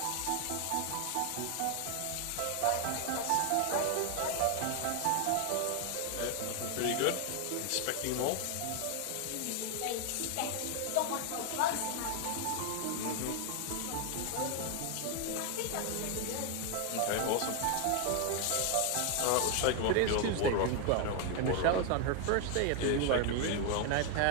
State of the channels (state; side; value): different; both; correlation 0.01